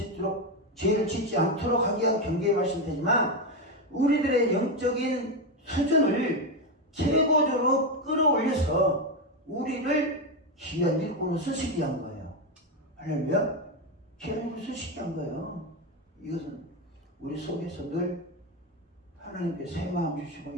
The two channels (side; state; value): both; normal; correlation 0.10